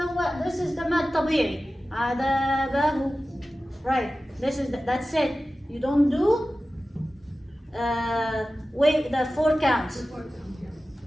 this is the mad tabi'i. عذابه. Right? That's it. You don't do wait, the 4 counts.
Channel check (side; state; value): both; normal; correlation 0.95